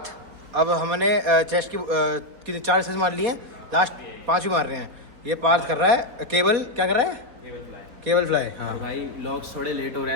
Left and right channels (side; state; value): left; late; 4.1 ms